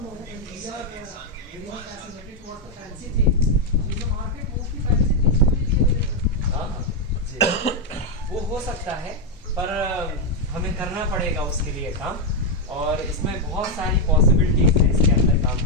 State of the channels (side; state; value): both; normal; correlation 0.01